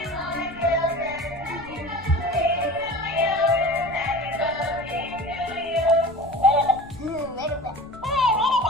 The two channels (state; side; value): noise; left; rumble, 19 dB below the sound